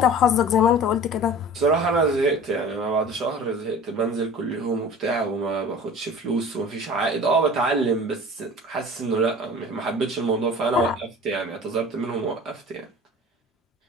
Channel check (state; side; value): normal; both; correlation 0.41